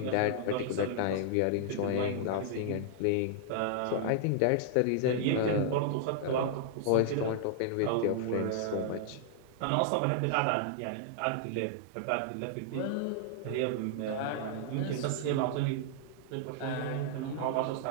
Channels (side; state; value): both; different; correlation -0.01